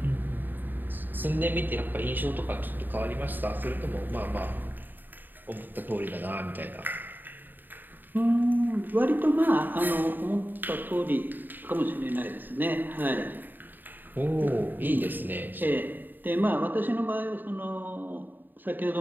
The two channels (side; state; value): left; late; 0.091 ms